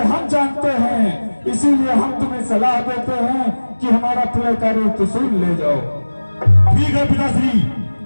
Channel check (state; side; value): inverted; both; correlation -1.00